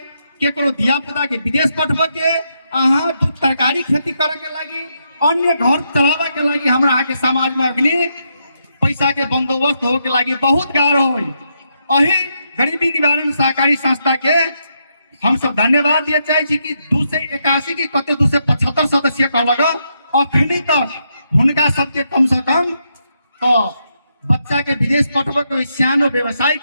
केकरो धिया पुता के विदेश पठबे के अहाँ दूध तरकारी खेती करे के लगी अन्य घर चलावे के लगी हमरा अहाँ के समाज में अग्नि पैसा के बंदोबस्त हो के लगी बहुत गाढ़ हो। अही गरीबी निवारण सहकारी संस्था के हम सब धन्यवाद दिए चाहे छी कि 281 की कते 275 सदस्य कहलक अखनी तक हुनका सबके कम से कम तो बच्चा के विदेश पठबे के सियानो व्यवसाय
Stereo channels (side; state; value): both; inverted; correlation -0.80